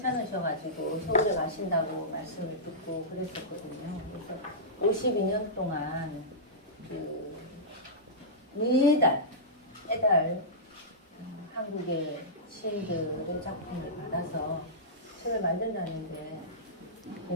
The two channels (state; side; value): normal; both; correlation -0.16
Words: 서울에 가신다고 말씀을 듣고 그랬었거든요. 그래서 52년 동안 매달 한국의 시인들의 작품을 받아서 책을 만든다는데